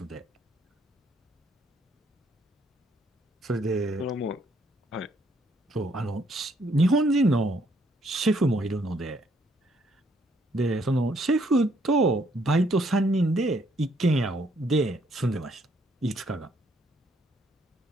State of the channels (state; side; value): normal; both; correlation 0.69